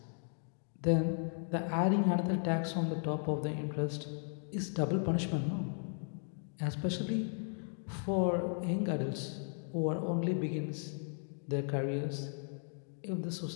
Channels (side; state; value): right; silent; 54 dB below the other